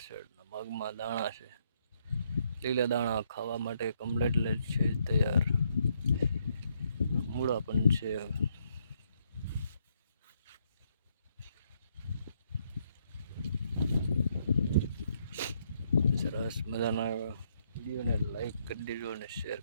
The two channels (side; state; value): both; inverted; correlation -0.73